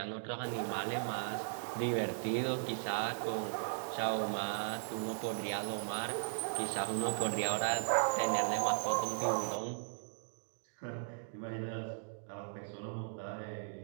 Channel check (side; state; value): left; silent; digital silence